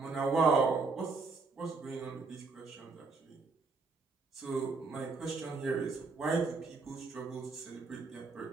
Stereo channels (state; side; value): quieter; left; 4.1 dB